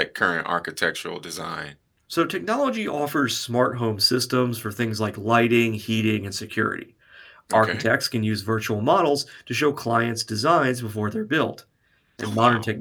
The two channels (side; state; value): both; identical; correlation 1.00